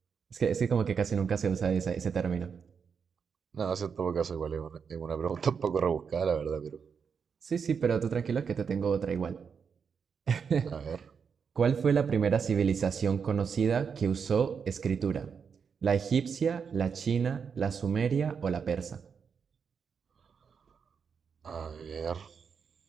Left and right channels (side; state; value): left; quieter; 6.4 dB